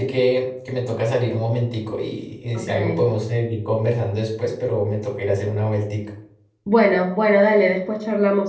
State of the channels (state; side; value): identical; both; correlation 1.00